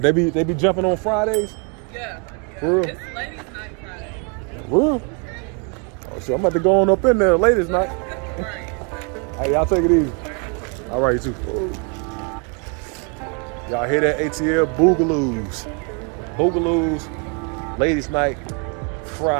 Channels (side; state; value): left; quieter; 36.3 dB